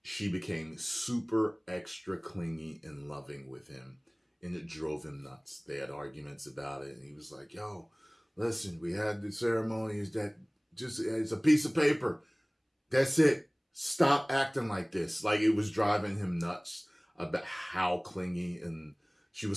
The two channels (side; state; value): both; identical; correlation 1.00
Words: she became super extra clingy and loving with him, and it drove him nuts. They had arguments about it, and he was like, yo, listen, we had the ceremony, is that just, it's a piece of paper. That's it. Stop acting like this. Like, it was driving him nuts about how clingy, and she